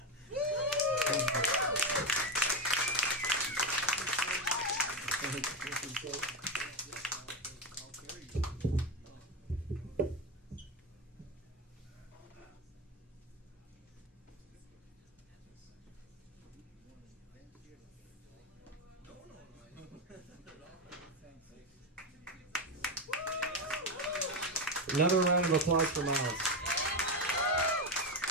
Another round of applause for Miles.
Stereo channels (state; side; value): normal; both; correlation 0.13